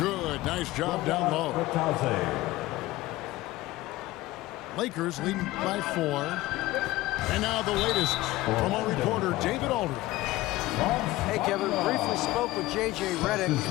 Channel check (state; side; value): quieter; right; 17.9 dB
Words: Nice job down low. Lakers leading by 4. And now the latest from our reporter, David Aldridge. Hey, Kevin, briefly spoke with J.J. Redick.